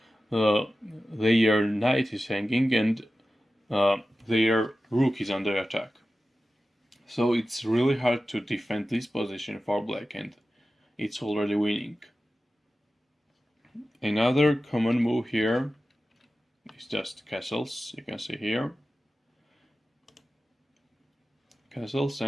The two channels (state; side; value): normal; both; correlation 0.94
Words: their knight is hanging, and their rook is under attack. So it's really hard to defend this position for black, and it's already winning. Another common move here is just castles, you can see here. Castles,